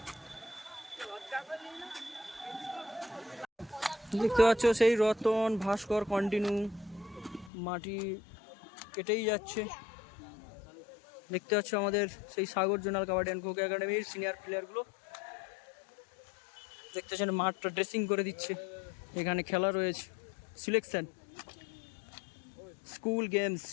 দেখতে পাচ্ছ সেই রতন ভাস্কর কন্টিনিউ মাটি কেটেই যাচ্ছে। দেখতে পাচ্ছ আমাদের সেই সাগর জোনাল কাবাডি অ্যান্ড খোখো একাডেমির সিনিয়র প্লেয়ারগুলো দেখতে পাচ্ছেন মাঠটা ড্রেসিং করে দিচ্ছে। এখানে খেলা রয়েছে, সিলেকশন স্কুল গেমস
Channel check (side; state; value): right; drops out; at 7.5 s